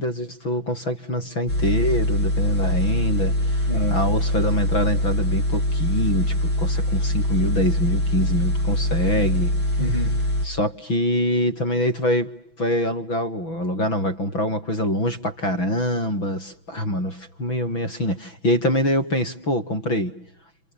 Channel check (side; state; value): right; late; 6.1 ms